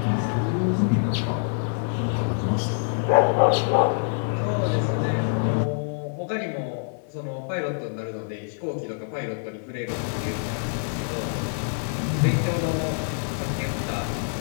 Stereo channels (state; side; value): silent; right; digital silence